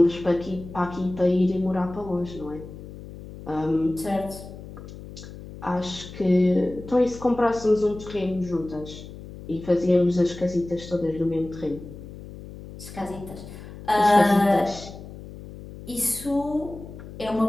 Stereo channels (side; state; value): left; noise; hum, 14 dB below the sound